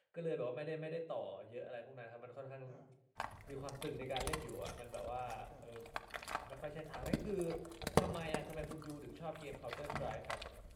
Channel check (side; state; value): both; identical; correlation 1.00